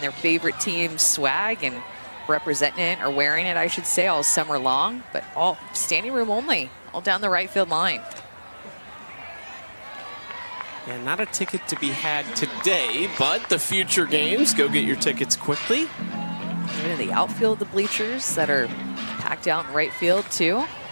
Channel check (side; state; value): both; inverted; correlation -1.00